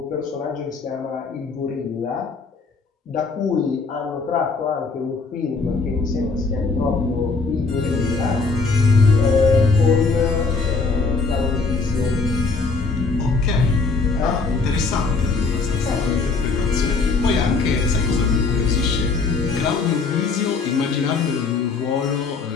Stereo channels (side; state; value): right; quieter; 4.3 dB